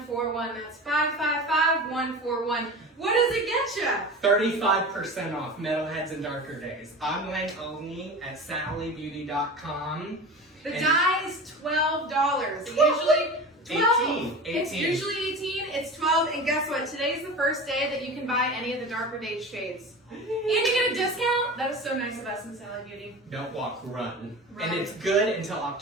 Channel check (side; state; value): both; normal; correlation 0.32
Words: That's 555-141. What does it get you? 35% off Metalheads and Darker Days. Online only at sallybeauty.com. The dye is $12. It usually 12. 18. It's usually 18. It's 12. And guess what? Today's the first day that you can buy any of the Darker Days shades. And you get a discount. That is so nice of us in Sally Beauty. Don't walk, run. Run. And it's good until